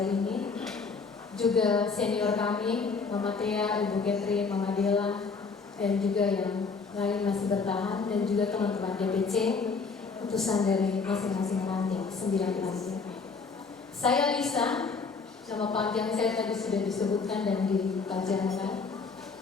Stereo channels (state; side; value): quieter; right; 4.7 dB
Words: ini. Juga senior kami, Mama Tia, Ibu Catherine, Mama Dela, dan juga yang lain masih bertahan, dan juga teman-teman DPC, utusan dari masing-masing ranting, 9 ranting. Saya Lisa, nama panjang saya tadi sudah disebutkan dan dipelajarikan.